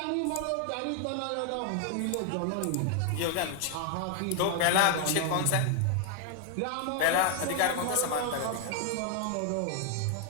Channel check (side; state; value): both; different; correlation 0.00